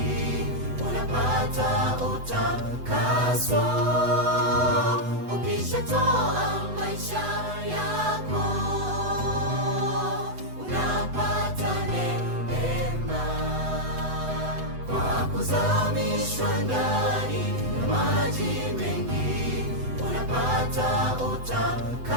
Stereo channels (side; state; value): left; late; 8.0 ms